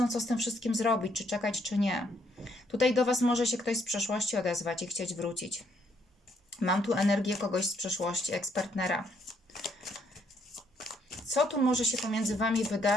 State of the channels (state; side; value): normal; both; correlation 0.71